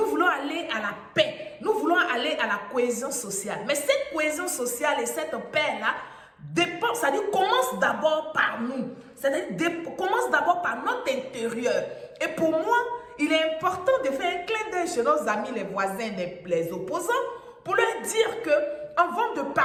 voulons aller à la paix. Nous voulons aller à la cohésion sociale. Mais cette cohésion sociale et cette paix-là dépend, c'est-à-dire commence d'abord par nous. C'est-à-dire commence d'abord par notre intérieur. Et pour moi, il est important de faire un clin d'œil chez nos amis, les voisins, les opposants, pour leur dire que avant de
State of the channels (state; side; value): identical; both; correlation 1.00